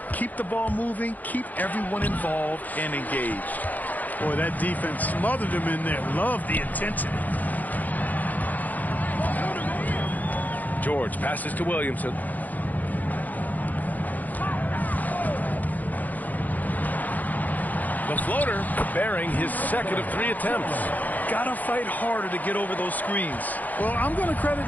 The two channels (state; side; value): late; right; 0.081 ms